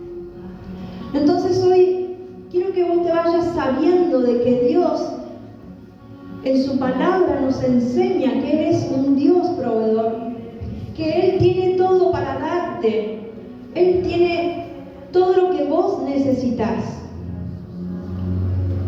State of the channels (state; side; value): identical; both; correlation 1.00